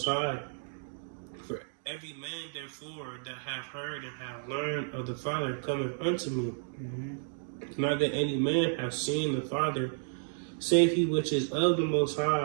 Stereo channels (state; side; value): silent; left; digital silence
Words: High. For every man, therefore, that hath heard and hath learned of the Father cometh unto me. Not that any man hath seen the Father, save he which is of the Most